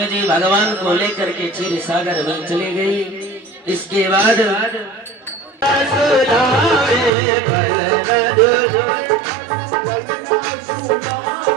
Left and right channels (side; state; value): left; drops out; at 7.1 s